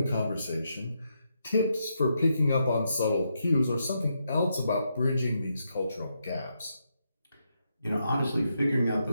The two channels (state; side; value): inverted; both; correlation -0.81